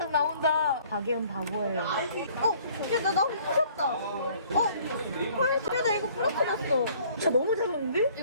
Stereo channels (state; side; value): inverted; both; correlation -0.57